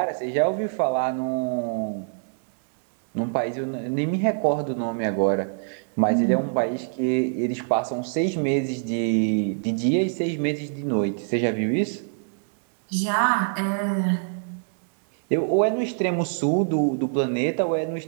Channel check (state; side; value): silent; left; 62 dB below the other